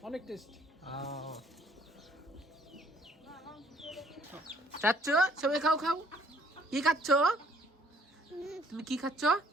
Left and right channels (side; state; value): both; normal; correlation 0.61